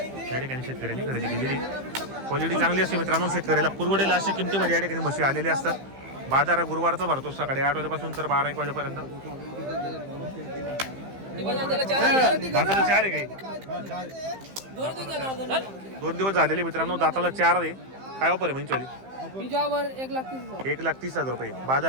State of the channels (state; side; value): late; left; 15 ms